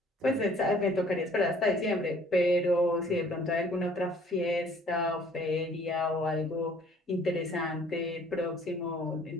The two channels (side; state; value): both; normal; correlation 0.56